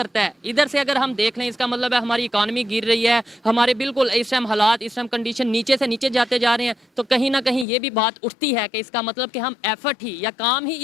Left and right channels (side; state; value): right; drops out; at 7.7 s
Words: है। इधर से अगर हम देख लें, इसका मतलब है हमारी इकॉनमी गिर रही है, हमारे बिल्कुल इस टाइम हालात, इस टाइम कंडीशन नीचे से नीचे जाते जा रहे हैं, तो कहीं ना कहीं ये भी बात उठती है कि इसका मतलब कि हम एफर्ट ही या काम ही